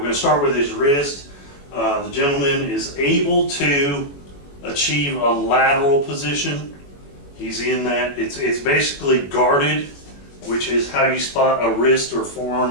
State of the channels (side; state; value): right; late; 21 ms